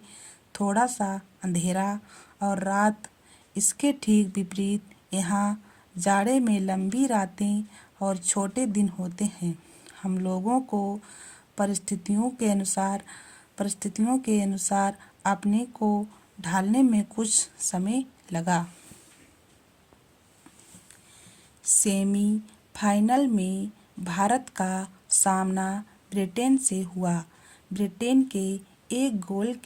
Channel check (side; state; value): both; identical; correlation 1.00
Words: थोड़ा सा अंधेरा और रात। इसके ठीक विपरीत यहाँ जाड़े में लंबी रातें और छोटे दिन होते हैं। हम लोगों को परिस्थितियों के अनुसार अपने को ढालने में कुछ समय लगा। सेमीफाइनल में भारत का सामना ब्रिटेन से हुआ। ब्रिटेन के एक गोल